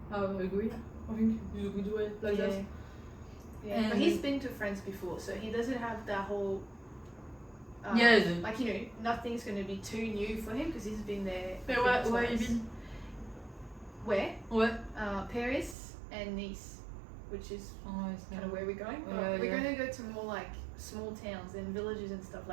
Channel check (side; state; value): left; drops out; at 15.8 s